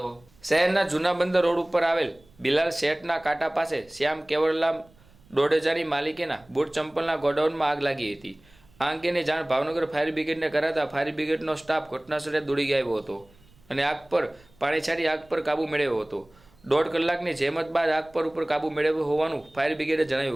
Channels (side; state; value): right; noise; rumble, 29 dB below the sound